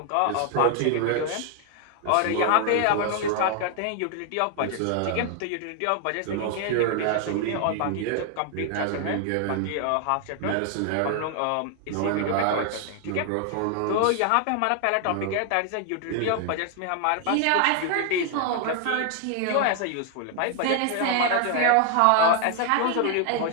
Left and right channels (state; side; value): different; both; correlation 0.00